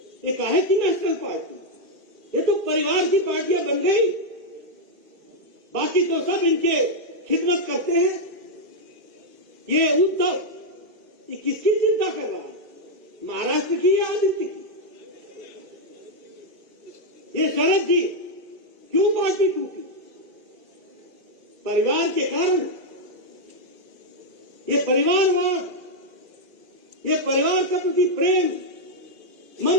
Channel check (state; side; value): late; left; 2.5 ms